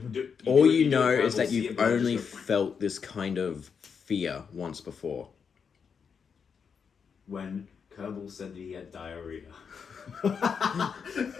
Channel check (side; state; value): right; quieter; 6.3 dB